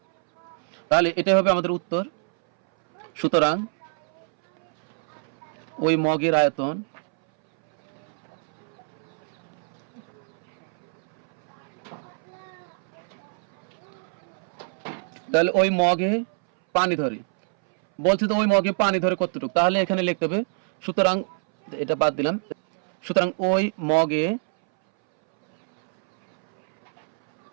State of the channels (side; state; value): left; silent; 62 dB below the other